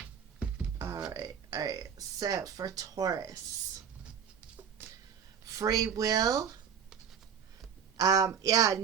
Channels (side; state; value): left; quieter; 7.9 dB